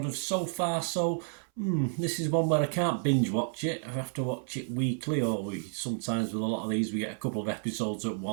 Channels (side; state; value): left; silent; 57 dB below the other